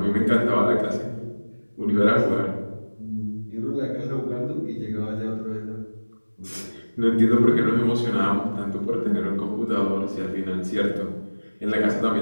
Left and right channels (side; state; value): both; inverted; correlation -1.00